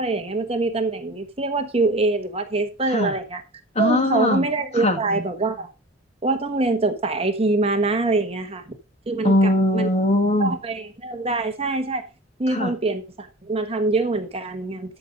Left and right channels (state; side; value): normal; both; correlation 0.38